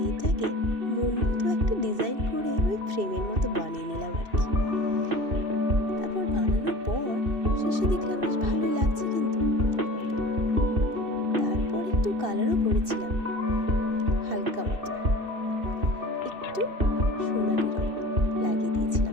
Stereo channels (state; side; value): late; left; 2.7 ms